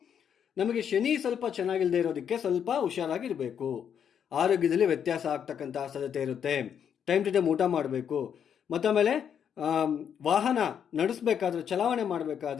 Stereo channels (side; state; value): right; quieter; 8.2 dB